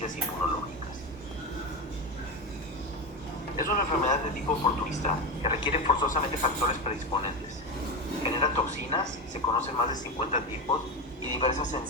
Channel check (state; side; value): normal; both; correlation 0.17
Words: inmunológicas. Es una enfermedad de tipo oportunista que requiere forzosamente factores predisponentes. Genera toxinas, se conocen más de 50 tipos y diversas